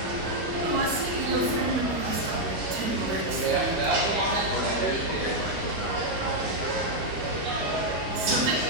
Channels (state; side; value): late; left; 13 ms